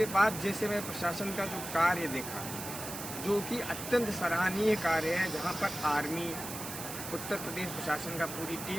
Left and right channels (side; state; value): right; noise; hiss, 8 dB below the sound